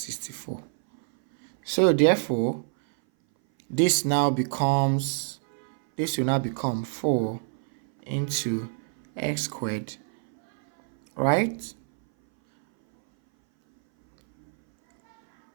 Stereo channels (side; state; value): left; silent; 59 dB below the other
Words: So therefore, this will now become 4 into x squared, right?